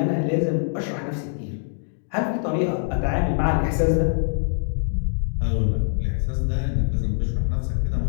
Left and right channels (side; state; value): right; silent; digital silence